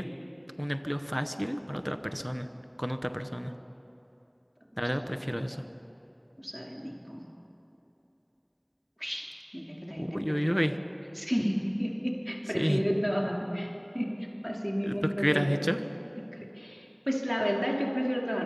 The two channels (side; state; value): both; identical; correlation 1.00